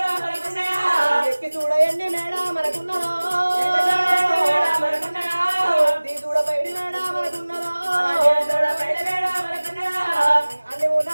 ఎక్కి చూడయండి మేడా మనకున్నదో దీ చూడ పైడి మేడా మనకున్నదో అన్ని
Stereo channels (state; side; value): inverted; both; correlation -1.00